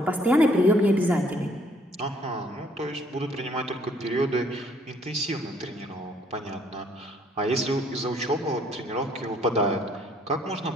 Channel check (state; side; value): normal; both; correlation 0.63